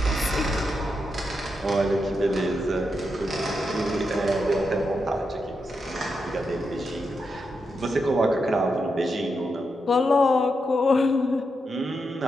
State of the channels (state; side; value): normal; both; correlation 0.85